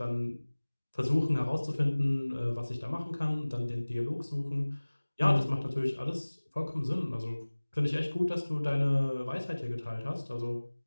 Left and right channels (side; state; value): both; inverted; correlation -1.00